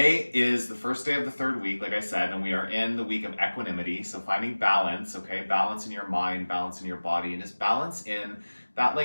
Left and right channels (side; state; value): both; inverted; correlation -1.00